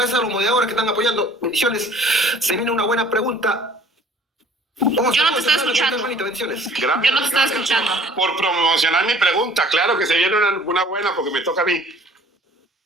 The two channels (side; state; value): both; normal; correlation 0.52